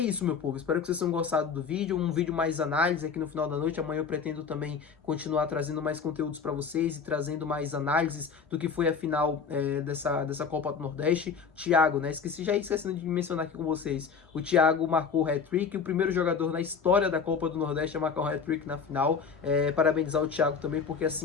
meu povo, espero que vocês tenham gostado do vídeo, um vídeo mais análise aqui no final da noite. Amanhã eu pretendo também continuar trazendo mais conteúdos para vocês e trazendo mais análises do que foi a final dessa Copa do Nordeste. Thiago, né, esquecendo de mencionar aqui com vocês, o Thiago marcou o hat-trick, o primeiro jogador na história da Copa do Nordeste a marcar um hat-trick na final. Parabenizar o Thiago também, porque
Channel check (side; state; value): right; quieter; 5.9 dB